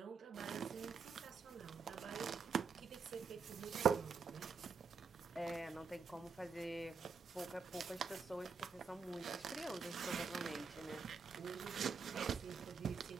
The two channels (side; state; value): left; quieter; 5.4 dB